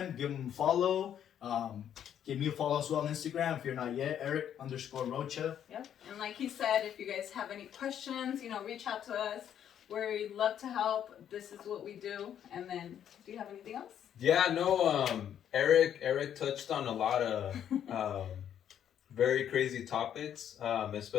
give them a follow. Give me a follow as well on Instagram if you're not yet, Eric_Rocha. Yep. And like he said, if you guys have any questions, you know, reach out to us. We love to help. This is what we do. And then, do you have anything else? Yeah, no, Eric touched on a lot of very crazy topics,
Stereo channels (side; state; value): right; quieter; 9.7 dB